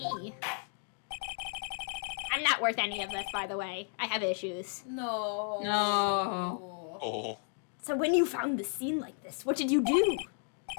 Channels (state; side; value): silent; right; 56 dB below the other